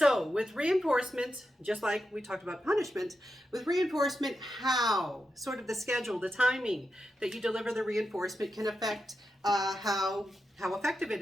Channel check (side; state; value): both; normal; correlation 0.88